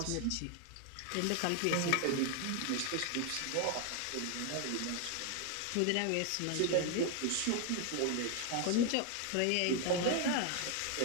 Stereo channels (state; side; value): different; both; correlation 0.01